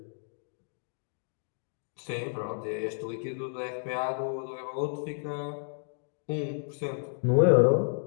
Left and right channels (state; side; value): silent; right; digital silence